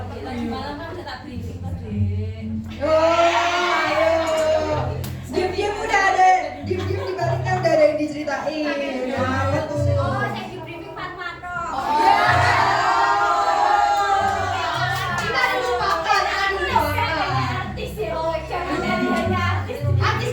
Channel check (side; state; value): both; identical; correlation 1.00